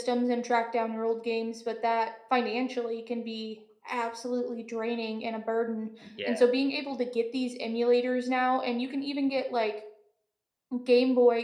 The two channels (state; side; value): identical; both; correlation 1.00